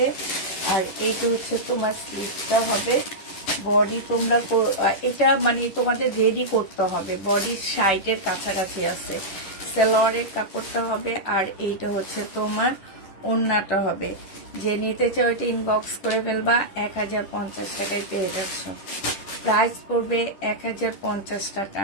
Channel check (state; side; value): late; right; 10 ms